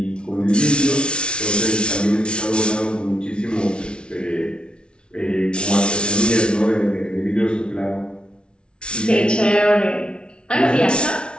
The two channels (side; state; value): right; late; 0.057 ms